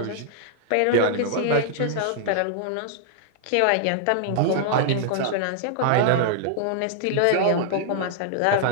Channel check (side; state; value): both; different; correlation -0.01